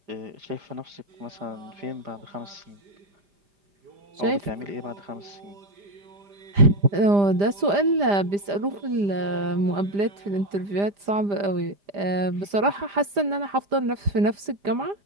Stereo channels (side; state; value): left; late; 5.0 ms